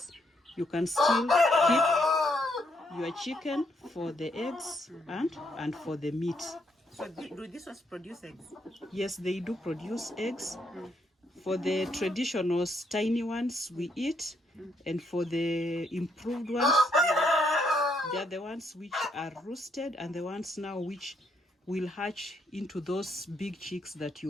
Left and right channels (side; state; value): both; normal; correlation 0.74